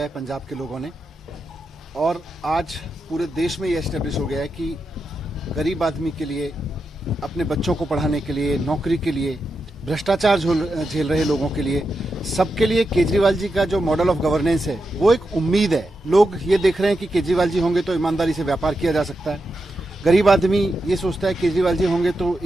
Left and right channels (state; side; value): normal; both; correlation 0.87